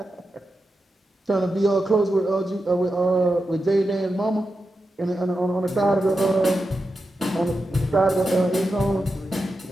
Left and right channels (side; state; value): both; normal; correlation 0.89